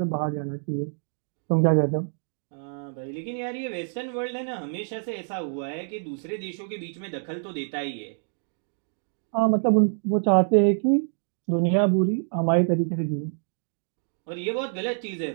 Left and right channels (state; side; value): silent; left; digital silence